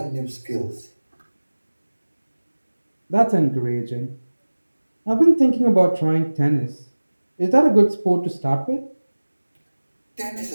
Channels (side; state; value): both; inverted; correlation -1.00